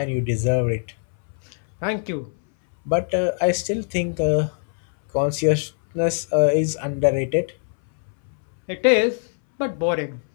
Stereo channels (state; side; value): silent; right; 63 dB below the other